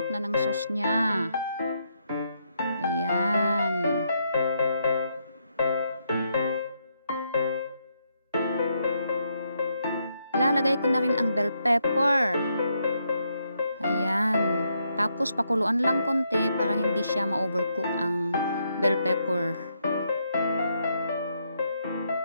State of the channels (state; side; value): inverted; both; correlation -0.78